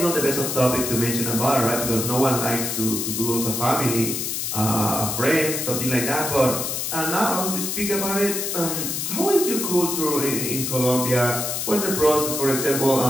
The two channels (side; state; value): left; noise; hiss, 2 dB below the sound